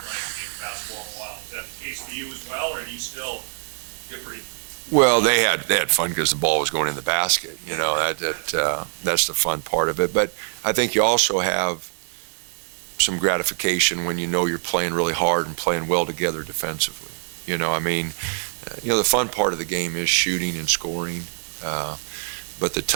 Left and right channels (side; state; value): left; silent; digital silence